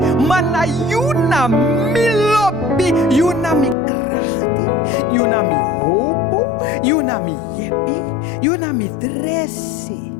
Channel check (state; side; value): drops out; right; at 3.8 s